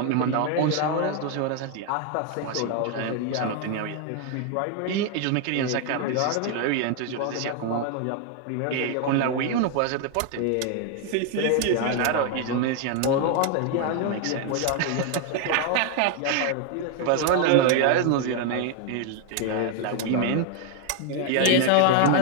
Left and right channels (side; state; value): both; different; correlation 0.01